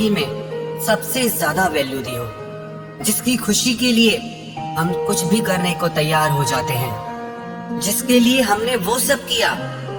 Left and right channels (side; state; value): both; identical; correlation 1.00